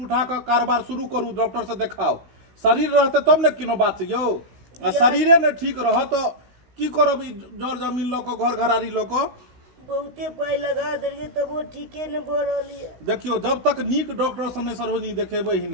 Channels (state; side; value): late; left; 16 ms